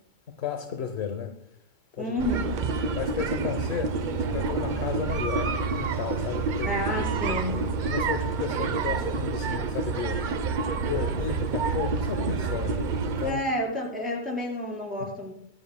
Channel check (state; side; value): late; left; 2.2 ms